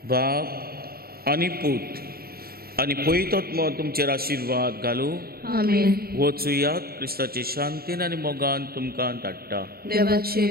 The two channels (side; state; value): left; late; 0.44 ms